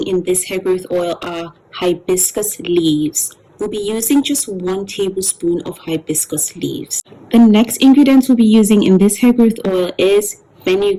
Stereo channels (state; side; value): identical; both; correlation 1.00